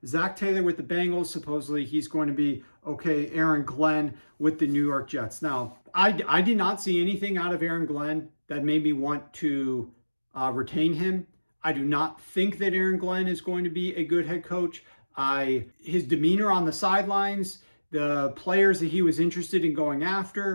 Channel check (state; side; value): inverted; both; correlation -1.00